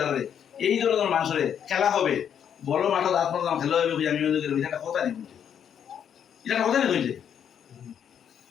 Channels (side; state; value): right; quieter; 8.6 dB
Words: দাঁড়ালে এই ধরনের মানুষের খেলা হবে, বড় মাঠে দাঁত পড়লাম খেলা হবে, আমি এটা কথা নেই, এটা কথা নেই হয়েছে।